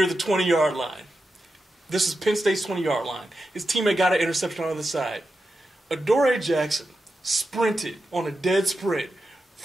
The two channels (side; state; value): both; normal; correlation 0.89